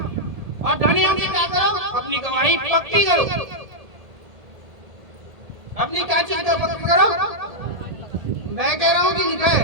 और धनी होके क्या करो, अपनी गवाही पक्की करो, अपनी क्या चीज को पक्की करो। मैं कह रहा हूँ कि लिखा है,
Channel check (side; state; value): left; late; 1.8 ms